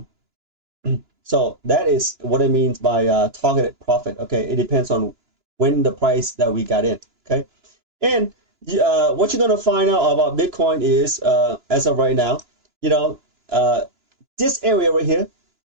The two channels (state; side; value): late; left; 2.9 ms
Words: so that is what it means by targeted profit. Okay, it depends on when the price that we got in. Okay, and what you're gonna find out about Bitcoin is, as of right now, you know, uh, this area right here,